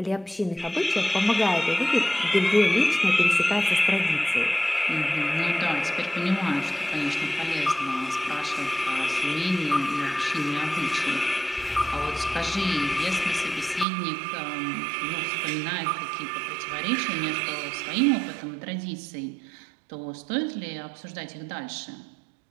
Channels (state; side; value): drops out; left; at 13.9 s